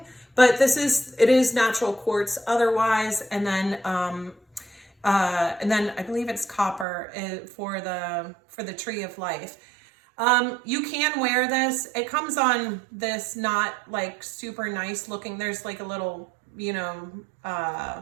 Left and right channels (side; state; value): left; drops out; at 6.9 s